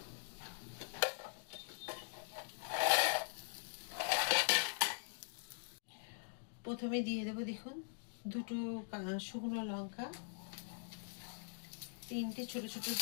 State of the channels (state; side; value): silent; right; digital silence